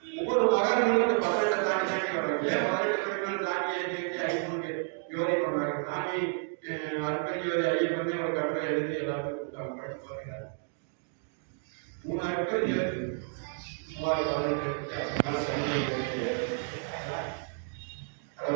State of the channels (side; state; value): left; silent; 57 dB below the other